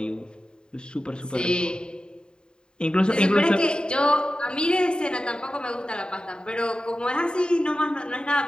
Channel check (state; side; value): late; right; 0.049 ms